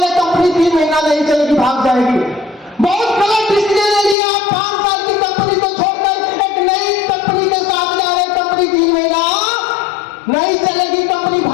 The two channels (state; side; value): drops out; right; at 4.2 s